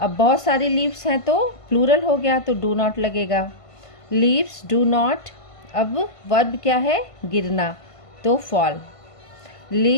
बहुत सारी लीव्स हैं तो प्लूरल हो गया, तो डू नॉट लगेगा। Leaves do not. अब वर्ब क्या है? गिरना, तो fall.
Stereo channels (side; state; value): right; late; 1.5 ms